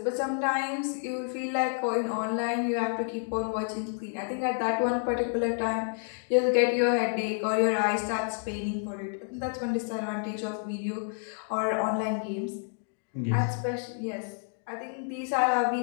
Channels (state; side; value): silent; right; 58 dB below the other